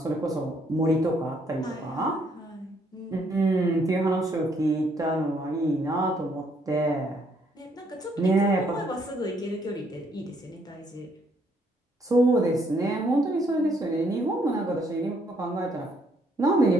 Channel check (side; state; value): both; normal; correlation 0.69